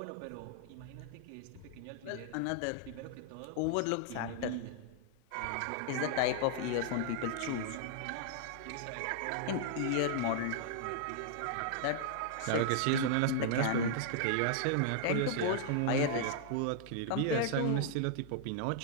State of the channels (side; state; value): both; different; correlation -0.01